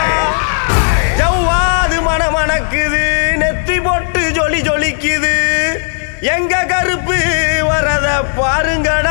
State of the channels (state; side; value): silent; right; digital silence